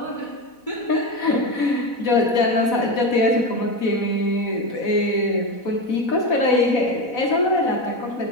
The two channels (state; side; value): late; right; 4.1 ms